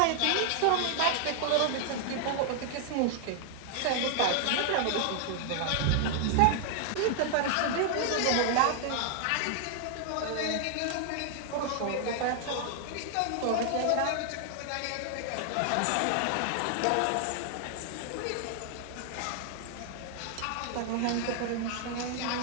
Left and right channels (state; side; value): different; both; correlation 0.00